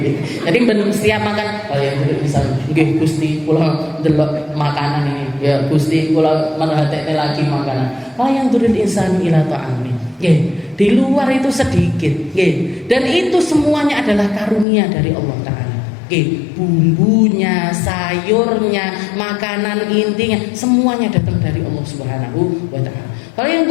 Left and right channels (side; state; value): right; drops out; at 14.7 s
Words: Jadi ben setiap makan kalian turil insanu. Nggih Gusti kula ndelok makanan ini. Ya Gusti kula merhatekne lagi makanan. Kalian turil insanu ila ta'ami. Nggih, di luar itu sedikit, nggih. Dan itu semuanya adalah karunia dari Allah Ta'ala. Bumbunya, sayurnya, makanan intinya semuanya datang dari Allah Subhanahu wa Ta'ala. Kalau yang